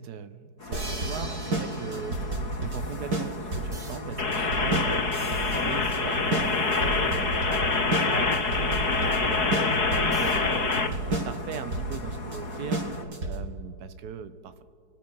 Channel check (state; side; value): late; left; 4.7 ms